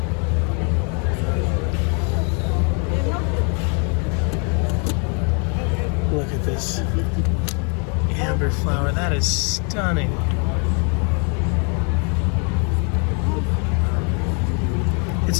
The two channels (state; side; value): quieter; right; 37.5 dB